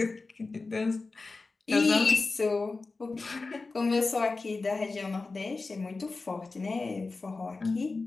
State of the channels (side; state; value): right; quieter; 3.8 dB